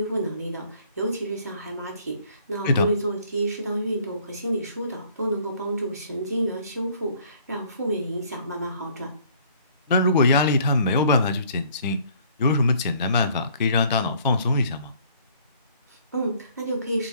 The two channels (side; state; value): both; inverted; correlation -0.59